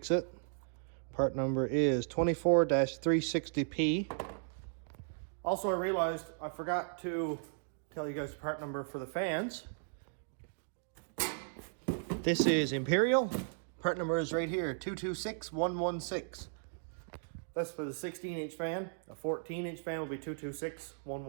it. Part number is 24-360P. Also, I realized I forgot to tell you guys the part number for the fans. This is Imperial. Part number is right here, 226116. That's for the 16-inch fan. A 14-inch fan will be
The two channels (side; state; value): left; silent; digital silence